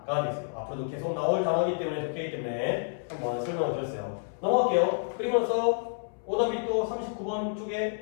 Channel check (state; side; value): silent; right; 58 dB below the other